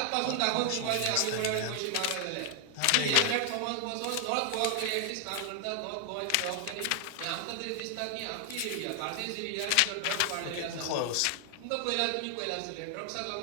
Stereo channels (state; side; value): different; both; correlation 0.00